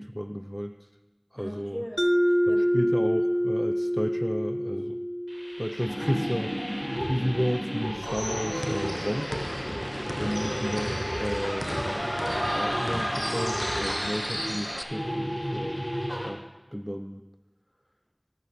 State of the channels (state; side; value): identical; both; correlation 1.00